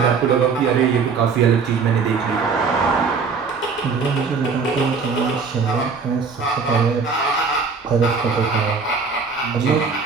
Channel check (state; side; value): quieter; left; 5.2 dB